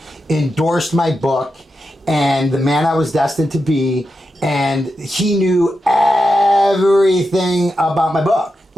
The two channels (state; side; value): normal; both; correlation 0.88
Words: endorsed my book, and The Man I Was Destined to Be, and he knew everything about my book.